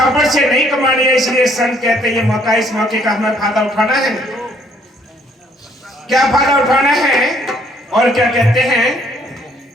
से नहीं कमानी है। इसलिए संत कहते हैं ये मौका, इस मौके का हमें फायदा उठाना है। क्या फायदा उठाना है और क्या कहते हैं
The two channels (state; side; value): normal; both; correlation 0.64